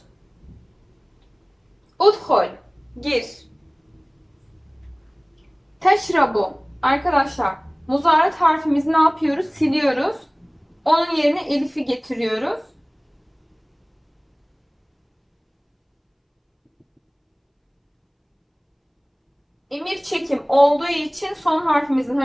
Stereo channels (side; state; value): both; identical; correlation 1.00